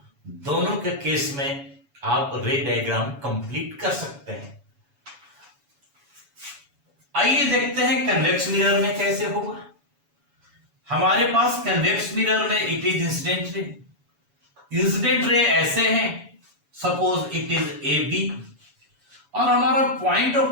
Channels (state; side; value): late; left; 7.1 ms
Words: दोनों के केस में आप रे डायग्राम कंप्लीट कर सकते हैं। आइए देखते हैं कन्वेक्स मिरर में कैसे होगा। हमारे पास कन्वेक्स मिरर में it is incident ray, incident ray ऐसे हैं, suppose it is A B और हमारा पॉइंट